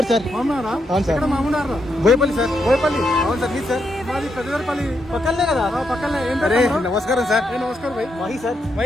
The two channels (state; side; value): normal; both; correlation 0.81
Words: सर। మామూనారా? అవును సార్. ఇక్కడ మామూనారా? బోయపల్లి సార్. బోయపల్లి. అవును సార్ మీ సార్. మాది పెద్దపల్లి పక్కనే కదా. పక్కనే. ఏం అరే పేరు తమ్ముడు? నమస్కారం సార్. ఏ నమస్కారం భాయ్. మహి సార్.